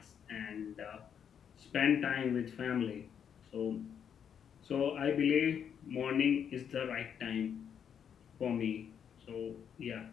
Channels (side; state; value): right; quieter; 8.1 dB